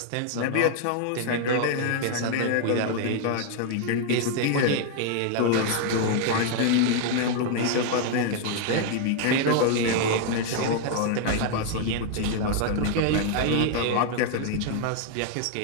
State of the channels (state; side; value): different; both; correlation 0.00